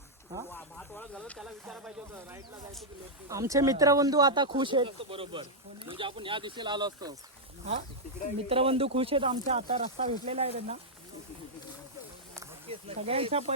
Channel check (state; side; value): normal; both; correlation -0.06